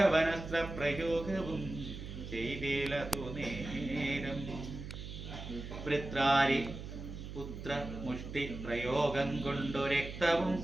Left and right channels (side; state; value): right; noise; hum, 9 dB below the sound